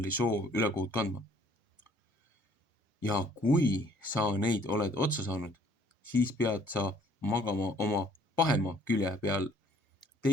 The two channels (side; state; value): both; normal; correlation 0.59